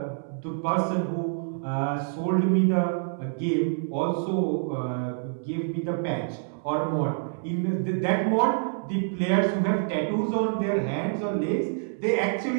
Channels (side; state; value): left; silent; 60 dB below the other